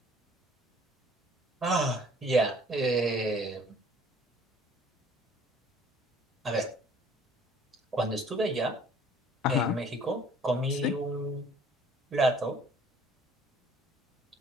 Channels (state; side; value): normal; both; correlation 0.55